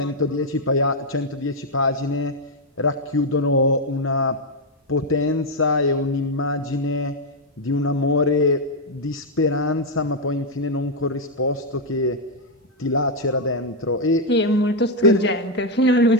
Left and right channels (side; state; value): both; normal; correlation 0.00